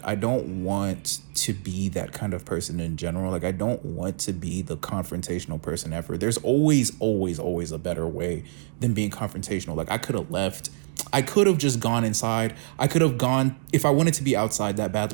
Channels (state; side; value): silent; left; digital silence